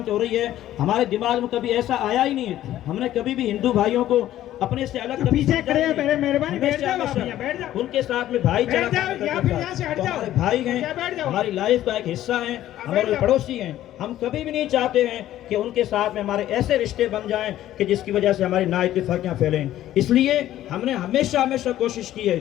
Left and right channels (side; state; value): right; quieter; 13.2 dB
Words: हो रही है, हमारे दिमाग में कभी ऐसा आया ही नहीं है। हमने कभी भी हिंदू भाइयों को अपने से अलग पीछे खड़े हैं, मेरे मेहरबानी बैठ जाओ, उनके साथ में भाईचारा, हमारे भाई हैं, हमारी लाइफ का एक हिस्सा हैं, हमारे पड़ोसी हैं। हम कभी भी नहीं चाहते हैं कि उनके साथ में हमारे ऐसे रिश्ते बन जाएं कि जिसकी वजह से हमारी नाइत्तेफाकियां फैलें। इसलिए हमने हमेशा कोशिश की है